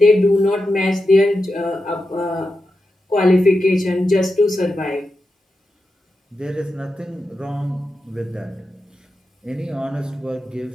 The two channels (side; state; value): both; normal; correlation 0.89